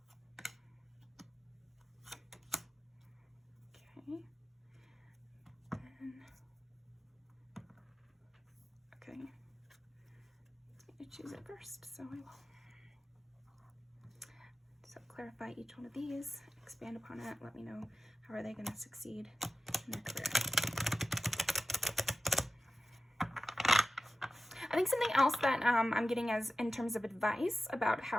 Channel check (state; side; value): normal; both; correlation 0.94